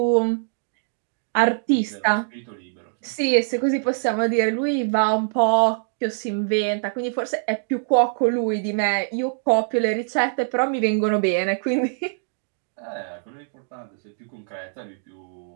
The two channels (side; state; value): left; silent; digital silence